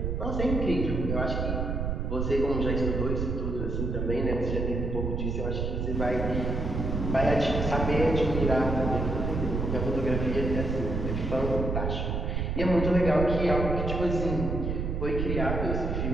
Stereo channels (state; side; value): noise; right; rumble, 1 dB below the sound